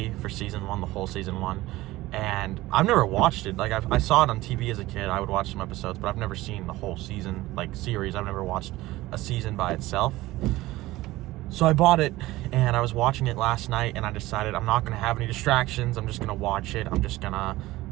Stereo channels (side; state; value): left; quieter; 18.0 dB